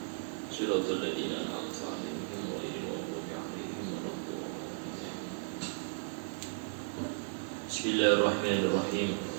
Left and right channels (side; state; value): left; silent; digital silence